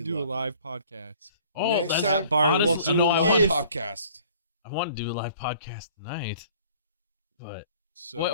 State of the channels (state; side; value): inverted; both; correlation -0.54